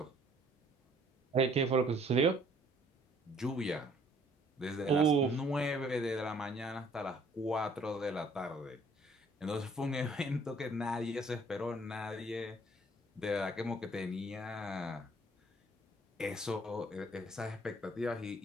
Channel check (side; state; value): both; normal; correlation 0.60